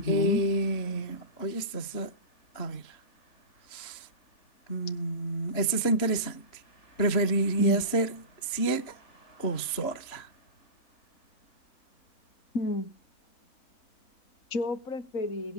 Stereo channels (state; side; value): late; right; 3.1 ms